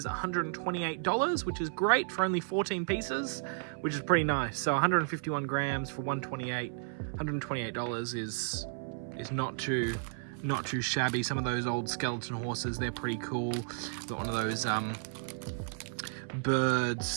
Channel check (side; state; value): left; silent; 56 dB below the other